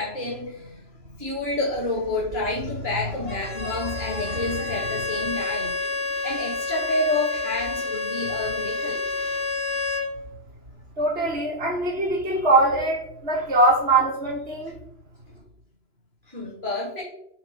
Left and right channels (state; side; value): late; left; 2.9 ms